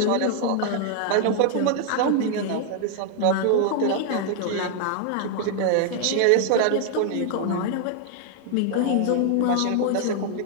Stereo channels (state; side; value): different; both; correlation 0.00